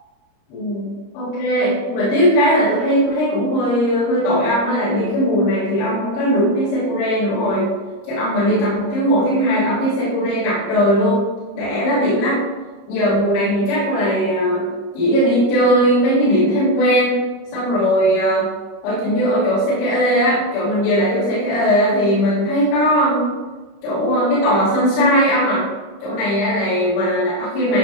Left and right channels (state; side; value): late; right; 30 ms